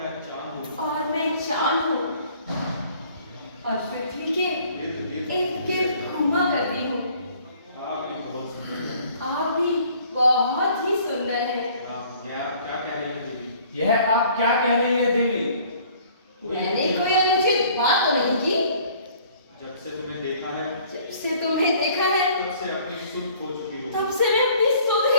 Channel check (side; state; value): both; inverted; correlation -0.55